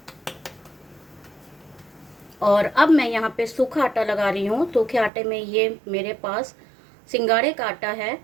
और अब मैं यहाँ पे सूखा आटा लगा रही हूँ। सूखे आटे में ये मेरे पास सिंगाड़े का आटा है।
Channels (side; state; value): left; drops out; at 5.1 s